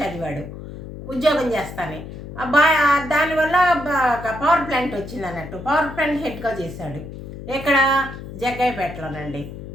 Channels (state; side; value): noise; left; hum, 11 dB below the sound